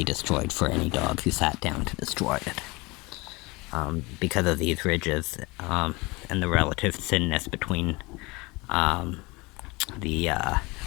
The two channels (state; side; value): quieter; right; 24.8 dB